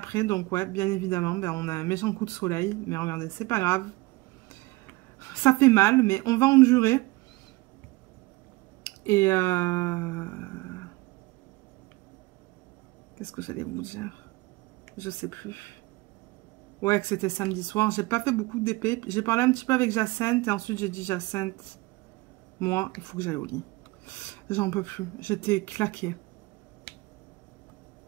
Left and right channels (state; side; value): quieter; left; 22.5 dB